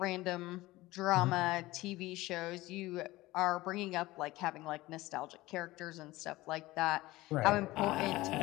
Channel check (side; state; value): right; quieter; 18.8 dB